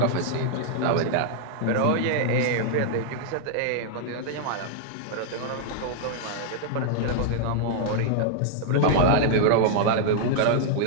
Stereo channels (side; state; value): both; different; correlation -0.01